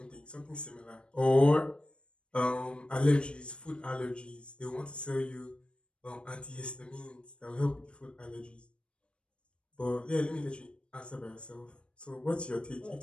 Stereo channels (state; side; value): late; right; 0.057 ms